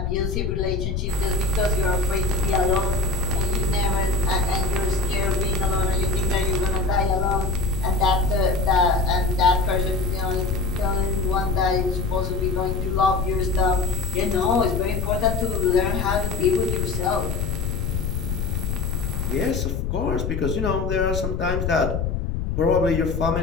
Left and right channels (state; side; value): noise; left; rumble, 1 dB below the sound